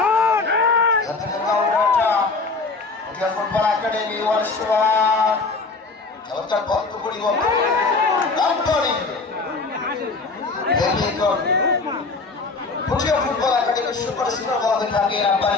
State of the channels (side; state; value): right; quieter; 3.9 dB